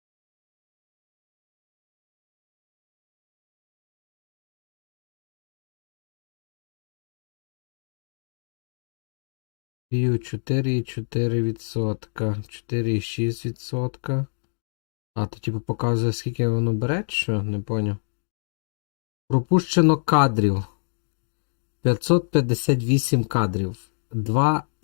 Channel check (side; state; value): right; silent; digital silence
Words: View 4,4%. 4,6%. А, то типу показує, скільки воно бере, що? Не поняв. Пропущено кадрів. 558 кадрів.